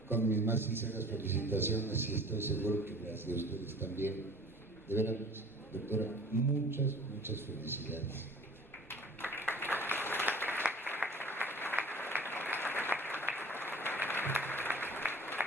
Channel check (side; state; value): both; normal; correlation 0.46